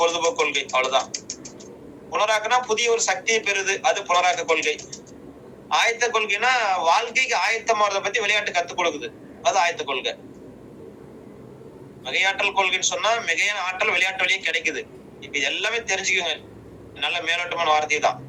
பொழுதுபோக்கு கொள்கை. அவ்வளவுதான். புனராக்கனா புதிய ஒரு சக்தியை பெறுது, அது புனராக்க கொள்கை. ஆயத்த கொள்கைனா வாழ்க்கைக்கு ஆயத்தமாறதை பத்தி விளையாட்டு கத்துக் கொடுக்குது, அது ஆயத்த கொள்கை. மிகையாற்றல் கொள்கைன்னு சொன்னா மிகையான ஆற்றல் விளையாட்டு வழியே கிடைக்குது. இப்ப எல்லாமே தெரிஞ்சுக்கோங்க, நல்ல மேலோட்டமான வார்த்தை தான்.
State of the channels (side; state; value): both; identical; correlation 1.00